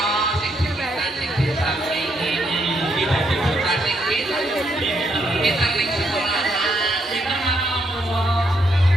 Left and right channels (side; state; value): both; normal; correlation 0.75